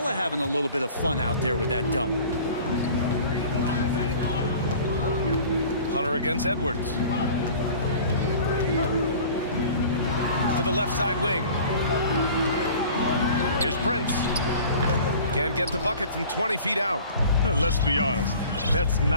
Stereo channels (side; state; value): both; inverted; correlation -0.44